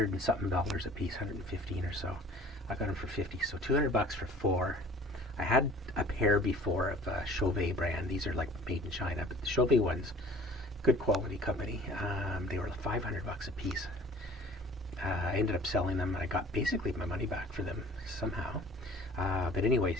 and something a piece, 115 or so. I got them for 50, so $200 for four. I had a pair before of Chauvet brand. These are like made in China, but the Chauvet ones, good quality company. They were $500 a piece. I ended up selling them. I got basically my money back for them somehow. But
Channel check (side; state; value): both; normal; correlation 0.48